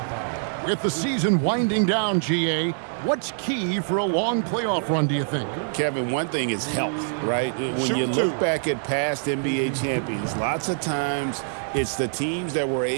With the season winding down, GA, what's key for a long playoff run, do you think? Kevin, one thing is health, right? When you look back at past NBA champions, lots of times it's the teams that were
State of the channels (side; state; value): left; silent; 62 dB below the other